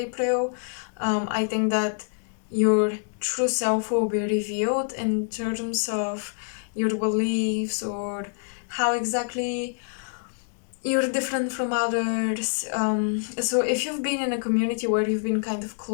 I think that your true self will be revealed in terms of your beliefs or how exactly you're different from others. So if you've been in a community where you've been kind of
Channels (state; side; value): silent; right; digital silence